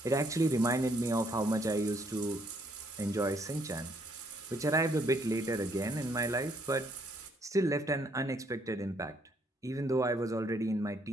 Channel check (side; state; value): both; normal; correlation 0.69